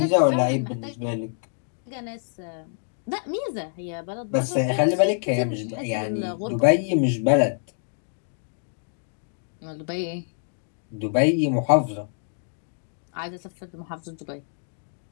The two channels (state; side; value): silent; right; digital silence